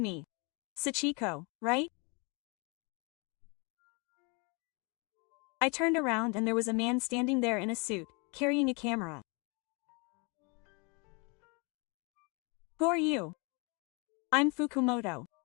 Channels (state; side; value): quieter; right; 31.7 dB